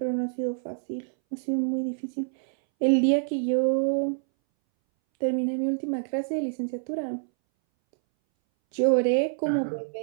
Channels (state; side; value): silent; left; 61 dB below the other